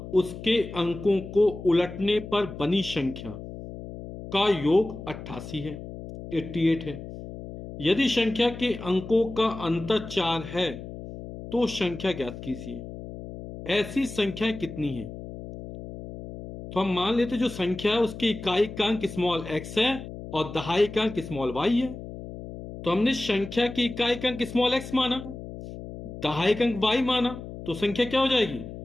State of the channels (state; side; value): noise; left; hum, 11 dB below the sound